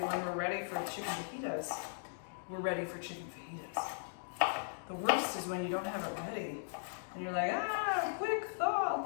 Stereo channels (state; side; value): silent; right; digital silence